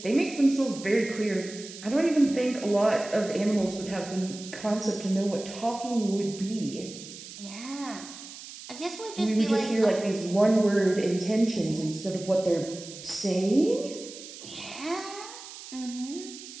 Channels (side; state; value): right; noise; hiss, 14 dB below the sound